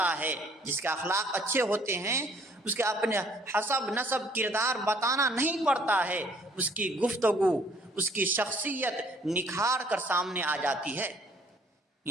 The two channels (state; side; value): normal; both; correlation 0.60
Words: ہے۔ جس کے اخلاق اچھے ہوتے ہیں اس کے اپنے حسب نسب کردار بتانا نہیں پڑتا ہے، اس کی گفتگو، اس کی شخصیت نکھار کر سامنے آ جاتی ہے۔